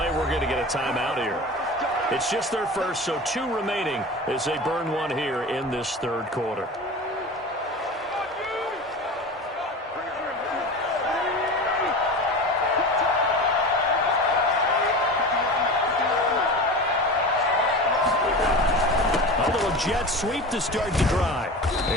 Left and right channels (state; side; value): normal; both; correlation 0.31